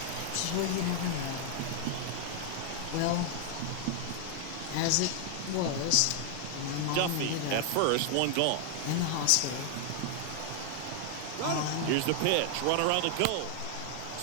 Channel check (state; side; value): different; both; correlation 0.00